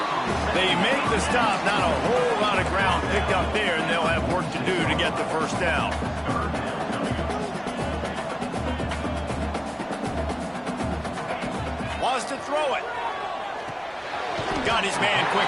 They make the stop. Not a whole lot of ground picked up there, and they'll have work to do to get the first down. Wants to throw it. Got his man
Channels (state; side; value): identical; both; correlation 1.00